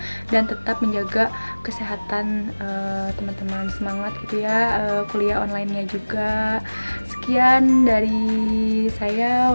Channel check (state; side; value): inverted; both; correlation -1.00